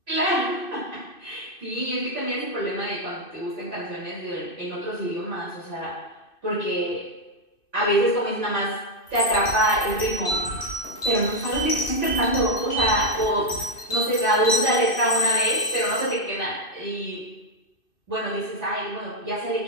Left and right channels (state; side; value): late; right; 2.6 ms